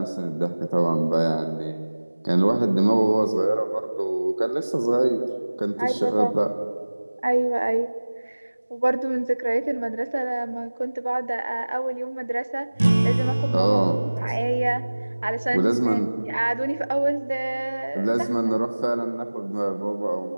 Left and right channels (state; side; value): inverted; both; correlation -1.00